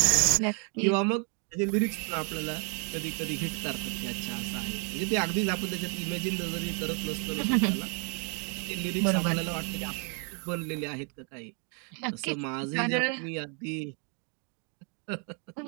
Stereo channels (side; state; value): left; quieter; 38.4 dB